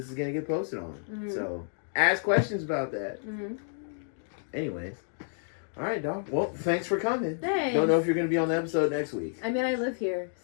is going to get posted on. So, ask questions about that. Anyways. All right, dog. Well, thanks for coming. Thanks. Don't know if you're going to be on the episode next week. I mean, I live here,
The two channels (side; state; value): right; silent; digital silence